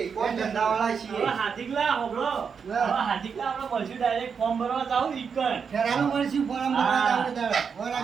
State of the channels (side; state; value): left; quieter; 6.3 dB